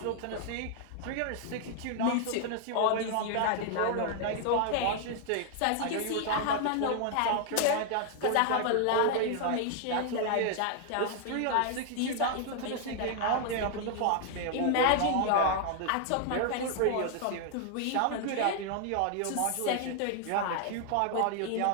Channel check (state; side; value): different; both; correlation 0.00